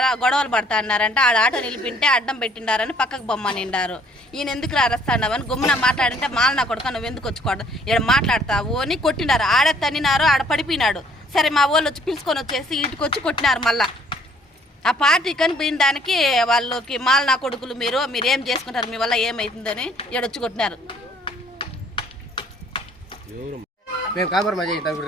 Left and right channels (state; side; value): normal; both; correlation 0.61